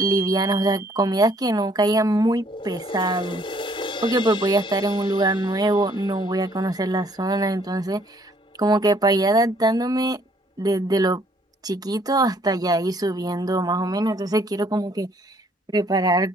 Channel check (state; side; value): normal; both; correlation 0.63